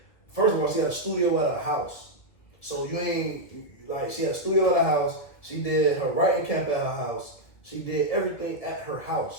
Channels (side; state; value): right; late; 2.0 ms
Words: first of all, she had a studio at her house. So you ain't like she had a studio at her house. She did her writing camp at her house. She did everything at her